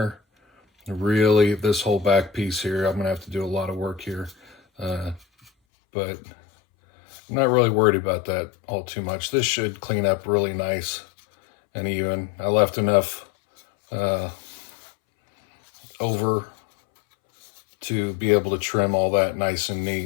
really, this whole back piece here, I'm gonna have to do a lot of work here, but I'm not really worried about that all too much. This should clean up really nice and even. I left enough over to be able to trim all that nice and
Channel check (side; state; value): right; drops out; at 5.5 s